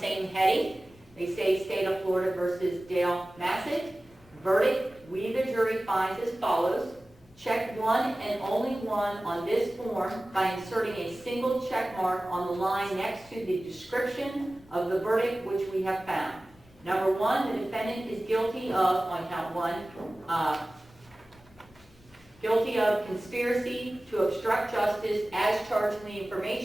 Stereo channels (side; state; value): both; normal; correlation 0.97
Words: heading. They say State of Florida versus Dale Massett. Verdict, we the jury finds as follows. Check one and only one on this form by inserting a single check mark on the line next to the description of the verdict which we have found. Number 1, the defendant is guilty of, on count 1, guilty of conspiracy to obstruct justice as charged in the